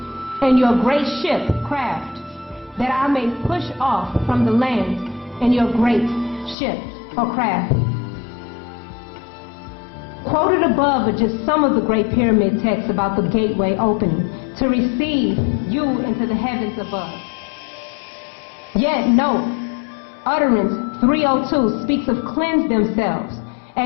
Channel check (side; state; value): right; drops out; at 6.6 s